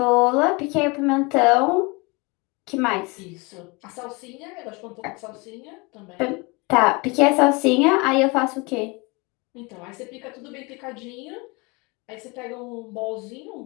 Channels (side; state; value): right; quieter; 27.5 dB